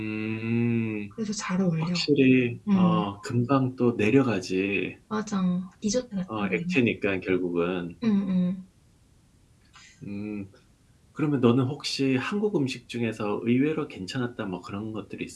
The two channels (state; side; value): identical; both; correlation 1.00